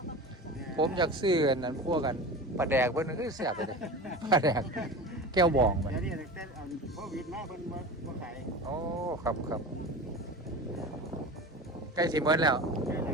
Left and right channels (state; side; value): normal; both; correlation 0.31